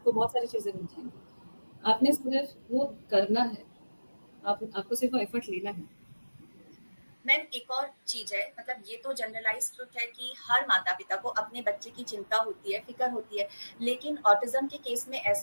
बहुत सारी चीजें मिल जाएंगी। आपने सिर्फ वो करना है, आपको सिर्फ वो एफर्ट लेना है। मैम एक और चीज है, मतलब ये तो जनरलाइज ट्रुथ है कि हर माता पिता को अपने बच्चे की चिंता होती है, फिक्र होती है। लेकिन ऑटिज्म के केस में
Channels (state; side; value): inverted; both; correlation -1.00